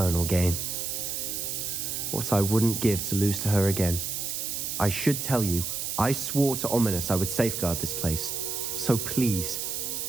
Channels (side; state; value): right; noise; hiss, 3 dB below the sound